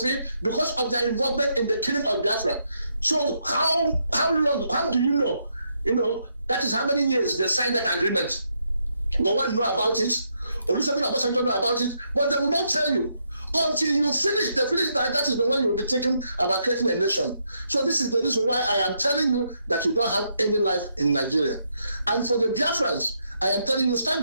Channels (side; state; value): both; inverted; correlation -0.77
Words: because of their involvement in the killing of Biafra. So how long, how do you know? That is how many years they signed that agreement. No one know about it. Olusegun Obasanjo know about it, but they will not tell you. Until you finish that is the one you will be thinking about creating a nation. So this is the reason why I am telling you that you don't have any life in Nigeria. And for the Biafrans, I am telling you, stand